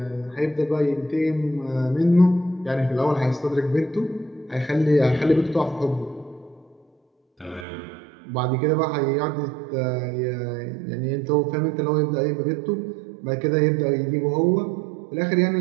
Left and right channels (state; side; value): drops out; left; at 7.7 s